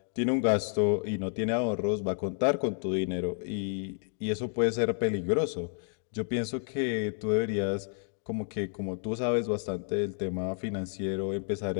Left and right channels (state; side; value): silent; right; 58 dB below the other